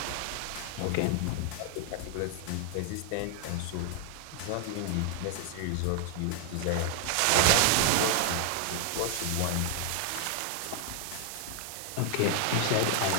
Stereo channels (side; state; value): both; different; correlation 0.00